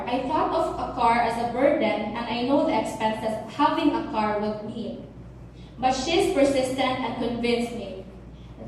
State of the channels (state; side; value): identical; both; correlation 1.00